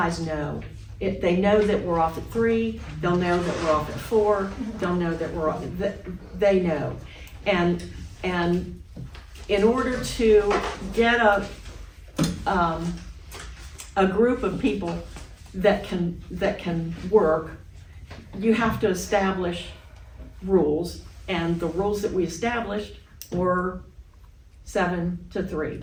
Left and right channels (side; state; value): both; identical; correlation 1.00